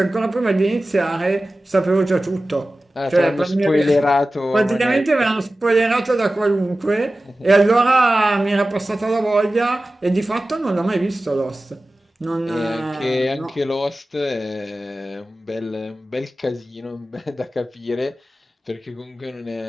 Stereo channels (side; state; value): both; normal; correlation 0.96